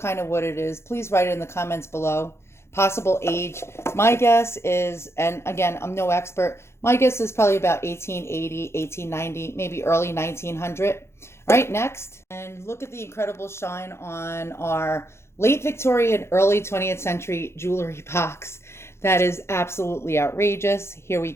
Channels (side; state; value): right; late; 0.13 ms